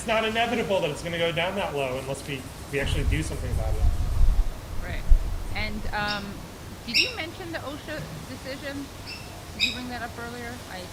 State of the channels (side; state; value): both; identical; correlation 1.00